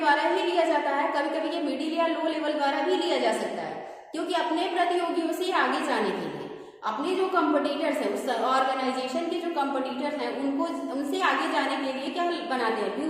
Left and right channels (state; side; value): identical; both; correlation 1.00